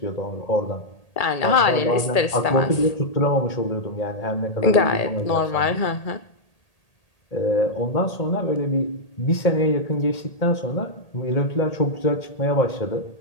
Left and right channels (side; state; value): right; late; 1.8 ms